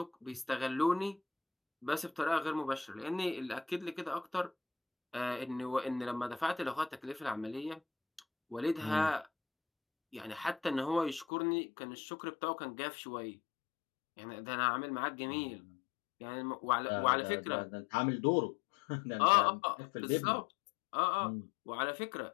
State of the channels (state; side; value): drops out; right; at 11.2 s